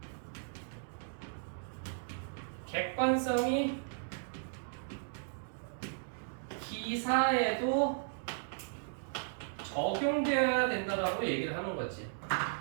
객관성이 기사에도 적용되어야 된다라고 얘기를 하는 거지.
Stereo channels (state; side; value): silent; left; digital silence